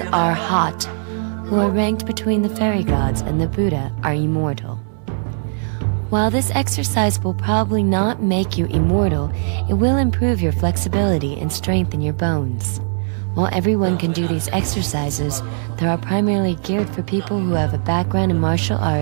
Arhat, who are ranked between the fairy gods and the Buddha, are immortal. While this exercise will probably not make you immortal, it will improve your flexibility and strengthen your bones. While everyone can do these exercises, they are primarily geared for people who have a background in martial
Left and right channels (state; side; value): silent; left; 62 dB below the other